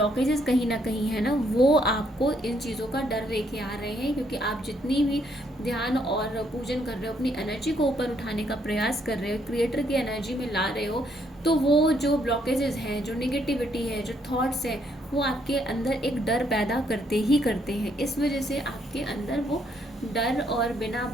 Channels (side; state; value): both; normal; correlation 0.71